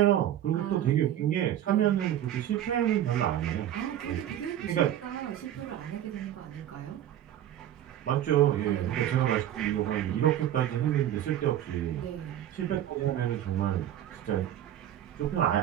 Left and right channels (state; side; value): quieter; left; 11.6 dB